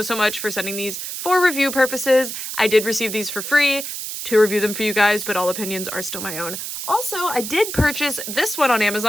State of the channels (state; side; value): noise; right; hiss, 6 dB below the sound